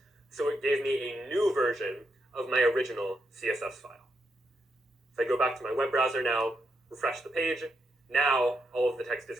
so it gave me a new version of my original CSS file. If I go back to my web browser now, refresh the page, now all of the text is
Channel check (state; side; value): normal; both; correlation 0.81